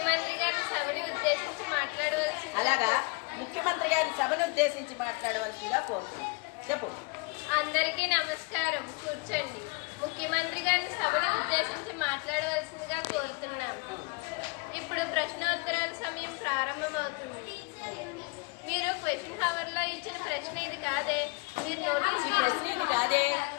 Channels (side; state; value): right; quieter; 29.3 dB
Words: గారి సభని ఉద్దేశించి మాట్లాడవలసింది. అలాగా ముఖ్యమంత్రి గారి సభను ఉద్దేశించి మాట్లాడవలసిందిగా కోరుతున్నాం. చెప్పు. అందరికీ నమస్కారం, కూర్చోండి. ముఖ్యమంత్రి గారి సభని ఉద్దేశించి మాట్లాడవలసిందిగా కోరుతున్నాను. ఇప్పుడు ప్రశ్నోత్తరాల సమయం ప్రారంభమవుతుంది. మీరు క్వశ్చన్ హవర్ లో ఇచ్చిన ప్రశ్న ఇది కాదే. మీరు నోటీస్